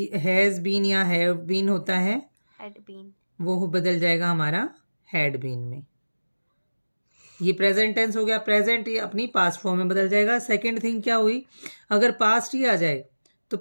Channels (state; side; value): inverted; both; correlation -1.00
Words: हैज बीन या हैव बीन होता है Had been. वो बदल जाएगा हमारा हैड बीन में। ये प्रेजेंट टेंस हो गया। प्रेजेंट ये अपनी पास्ट फॉर्म में बदल जाएगा। सेकंड थिंग क्या हुई, अगर पास्ट ही आ जाए तो